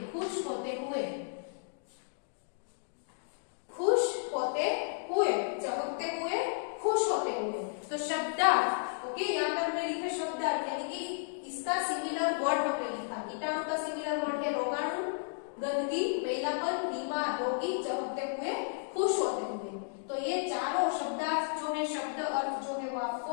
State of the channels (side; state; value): right; silent; digital silence